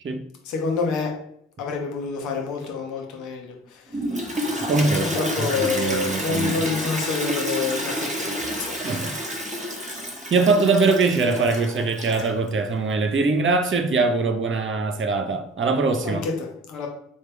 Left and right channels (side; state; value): both; normal; correlation 0.43